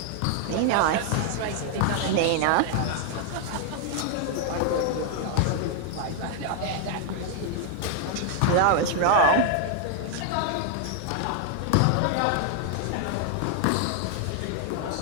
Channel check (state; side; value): different; both; correlation 0.00